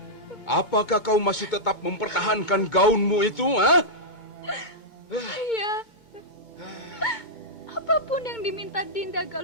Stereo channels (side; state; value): right; late; 2.2 ms